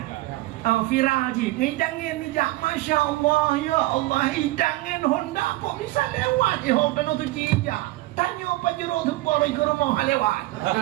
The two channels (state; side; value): quieter; left; 18.6 dB